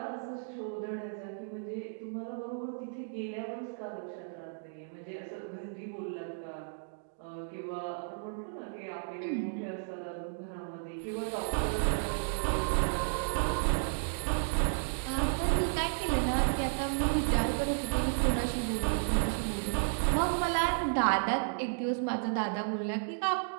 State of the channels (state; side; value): silent; left; digital silence